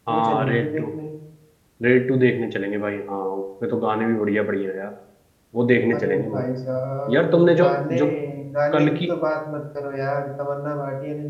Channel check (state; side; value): identical; both; correlation 1.00